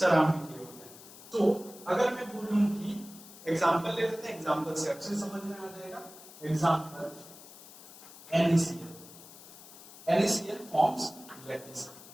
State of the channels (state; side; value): noise; left; hiss, 18 dB below the sound